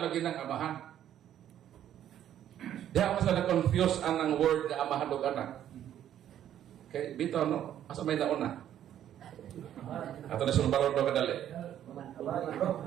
ng amahan. Diya mo sa na-confuse ang word na amahan o anak. Okay, bitaw no? Asa may nauna? Ato na sulbarod do kadali.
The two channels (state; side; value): quieter; left; 10.9 dB